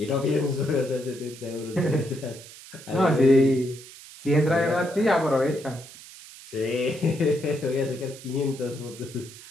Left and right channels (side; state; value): right; noise; hiss, 17 dB below the sound